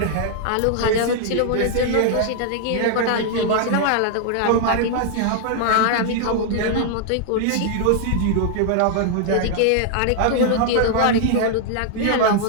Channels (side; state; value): both; different; correlation 0.00